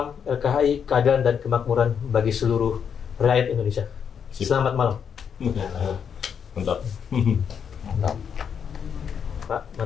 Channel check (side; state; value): right; quieter; 7.4 dB